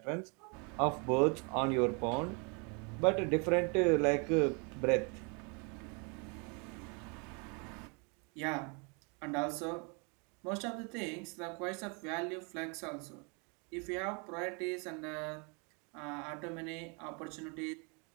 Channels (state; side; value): quieter; left; 33.7 dB